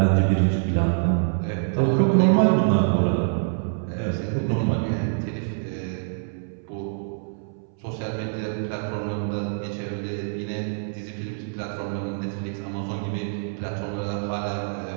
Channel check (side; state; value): left; silent; 61 dB below the other